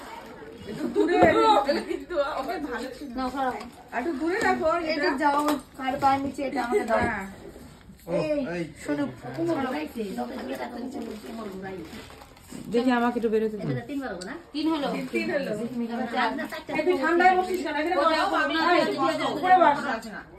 একটু দূরে কিন্তু ওকে ভালো ছিল নাও সরাও। একটু দূরে রাখো এটা যাও কার পায়ের নিচে এটা আমাকে দাও। হ্যাঁ শোনো কোমর ঘুরাইছে, যত দূরে রাখতে নিচে কোমর ঘুরাইছে। দেখি আমাকে একটু বেরোতে দাও এটা 3 বার হবে না? 3 হলো। আপনার সাইডটা এই তুই ঠান্ডায় বসিস কেন এখানে বস উপরে বস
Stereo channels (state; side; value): identical; both; correlation 1.00